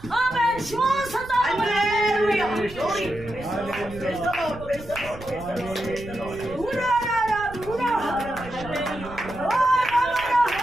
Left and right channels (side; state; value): right; noise; rumble, 15 dB below the sound